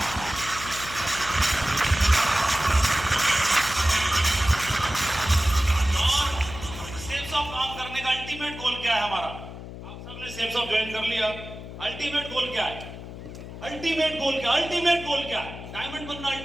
अल्टीमेट गोल क्या है हमारा? आप सबने सेफ्स ऑफ ज्वाइन कर लिया। अल्टीमेट गोल क्या है? अल्टीमेट गोल क्या? अल्टीमेट गोल क्या है? डायमंड बनना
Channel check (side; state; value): left; noise; hum, 12 dB below the sound